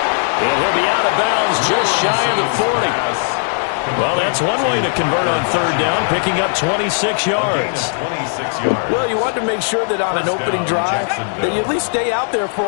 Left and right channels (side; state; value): right; silent; 67 dB below the other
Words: And he'll be out of bounds just shy of the 40. Well, that's one way to convert on 3rd down, picking up 26 yards. Well, you want to make sure that on an opening drive that you at least stay out there for